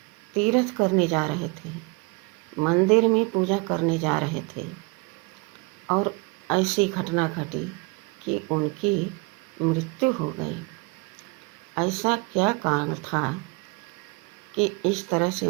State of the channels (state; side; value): quieter; left; 28.2 dB